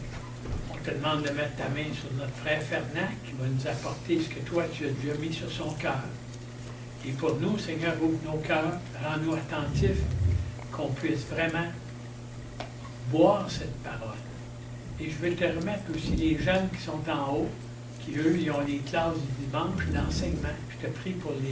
On te demande de mettre ta main sur notre frère Fernand qui va nous apporter ce que toi tu as déjà mis sur son cœur. Et pour nous, Seigneur, ouvre nos cœurs, rends-nous attentifs, qu'on puisse vraiment boire cette parole. Et je veux te remettre aussi les jeunes qui sont en haut, qui eux, ils ont les classes du dimanche d'enseignement. Je te prie pour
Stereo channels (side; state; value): both; identical; correlation 1.00